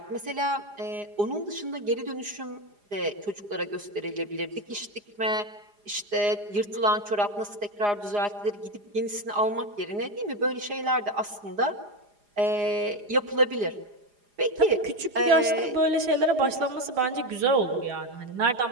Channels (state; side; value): late; left; 4.9 ms